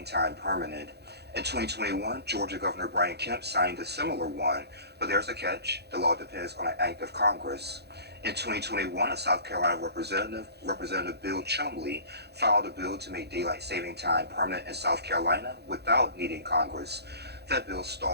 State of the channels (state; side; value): late; left; 0.48 ms